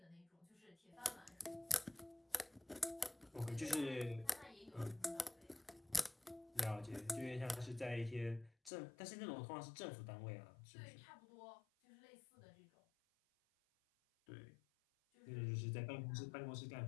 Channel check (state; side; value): drops out; right; at 8.7 s